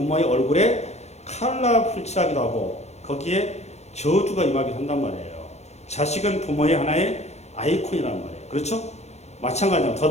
얼굴에 칼라풀칠하기도 하고 거기에 저주가 임하기도 한단 말이에요. 자식은 부모의 하나의 아이콘이란 말이에요. 그렇죠? 마찬가지로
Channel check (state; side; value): late; right; 0.32 ms